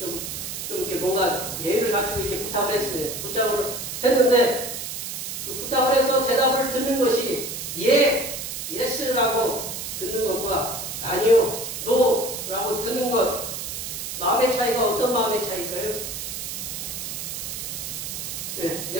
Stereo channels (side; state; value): right; noise; hiss, 6 dB below the sound